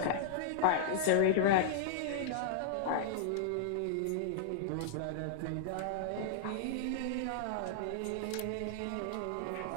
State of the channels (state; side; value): different; both; correlation -0.01